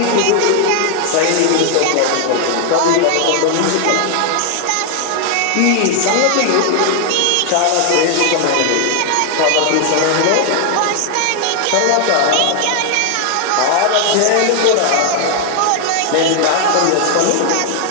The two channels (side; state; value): both; different; correlation 0.00